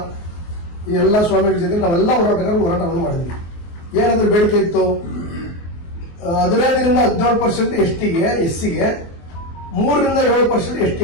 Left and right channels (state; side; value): late; right; 24 ms